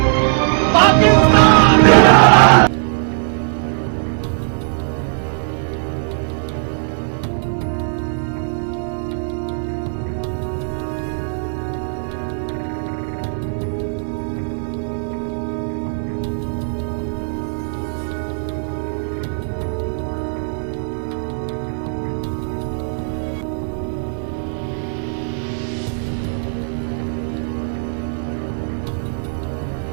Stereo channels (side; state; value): left; silent; 66 dB below the other